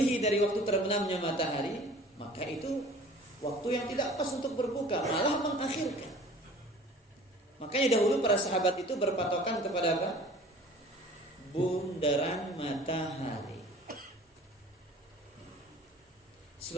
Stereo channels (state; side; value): normal; both; correlation 0.47